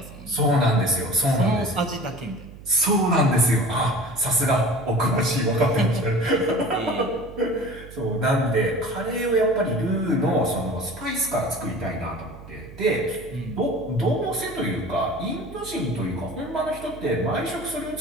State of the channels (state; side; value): noise; right; hum, 17 dB below the sound